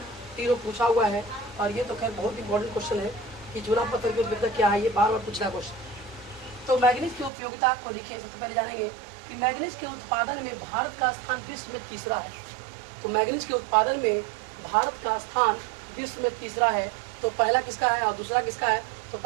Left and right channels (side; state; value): left; drops out; at 7.3 s